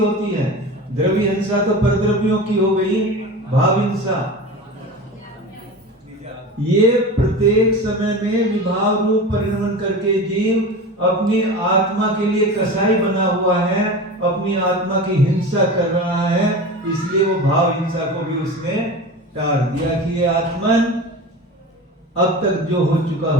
है? द्रव्य हिंसा तो परद्रव्यों की हो गई, भाव हिंसा ये प्रत्येक समय में विभाव रूप परिणमन करके जीव अपनी आत्मा के लिए कसाई बना हुआ है, अपनी आत्मा की हिंसा कर रहा है। इसलिए वो भाव हिंसा को भी उसने टाल दिया कि ये आत्मन अब तक जो हो चुका,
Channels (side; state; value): both; normal; correlation 0.31